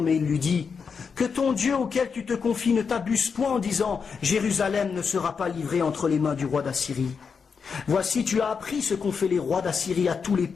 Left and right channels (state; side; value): quieter; right; 5.8 dB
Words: mais il lui dit que ton Dieu auquel tu te confies ne t'abuse point en disant « Jérusalem ne sera pas livrée entre les mains du roi d'Assyrie ». Voici, tu as appris ce qu'ont fait les rois d'Assyrie à tous les